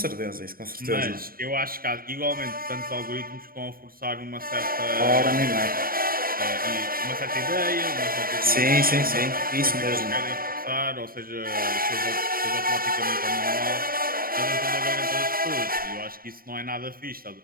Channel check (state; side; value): late; left; 0.42 ms